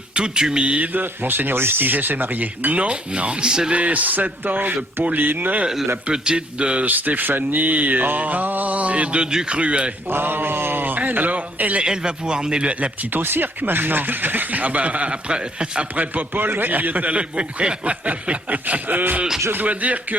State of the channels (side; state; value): both; normal; correlation 0.65